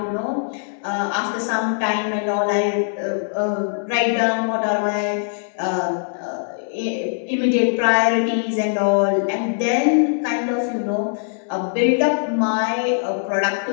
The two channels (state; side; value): silent; right; digital silence